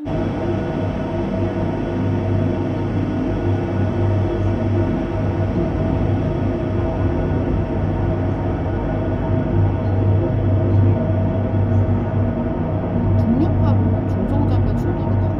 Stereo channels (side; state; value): both; identical; correlation 1.00